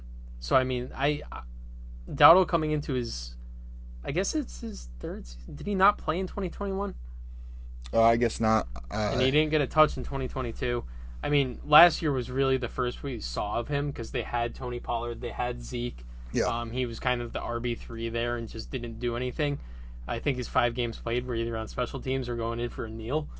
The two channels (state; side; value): identical; both; correlation 1.00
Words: I mean, Dowdle coming into his, I guess it's his third season. Did he not play in 2021? I guess not. And he didn't get a touch in 2022. I mean, last year was really the first we saw of him because they had Tony Pollard, they had Zeke. Yeah. He was kind of the RB3 there and just didn't do anything. I think his 5 games played were either on special teams or going in for a kneel.